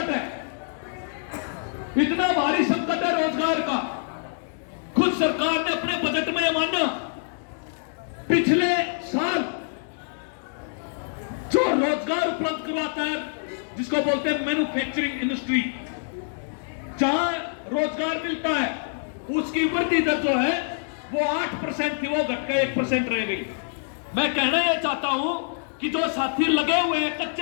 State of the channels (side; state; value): right; silent; 61 dB below the other